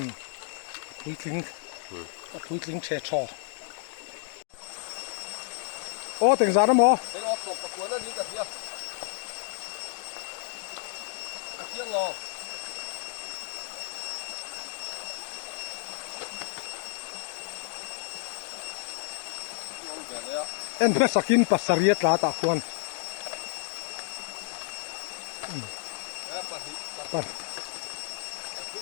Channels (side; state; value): right; silent; digital silence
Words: quý thính trẻ trò ô tiền giá đó mò cái ót sồn có cuốn nó đi cả kia tiếng ngò en pe sakin pasariat la ta khuan